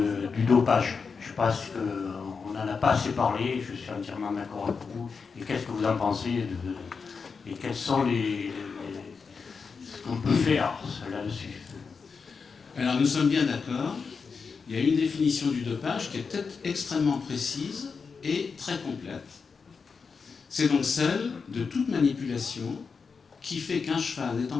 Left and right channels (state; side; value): quieter; right; 5.3 dB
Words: dopage. Je pense qu'on n'en a pas assez parlé, je suis entièrement d'accord avec vous. Et qu'est-ce que vous en pensez et quels sont ce qu'on peut faire là-dessus? Alors nous sommes bien d'accord. Il y a une définition du dopage qui est peut-être extrêmement précise et très complète. C'est donc celle de toute manipulation qui fait qu'un cheval n'étant